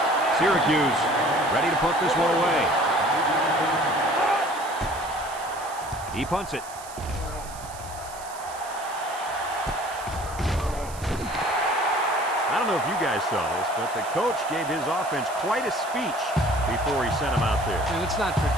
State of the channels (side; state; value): right; noise; hiss, 16 dB below the sound